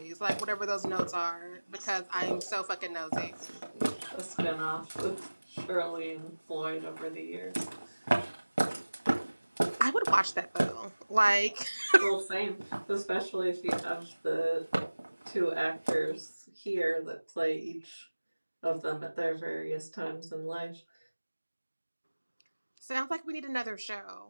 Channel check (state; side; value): inverted; both; correlation -1.00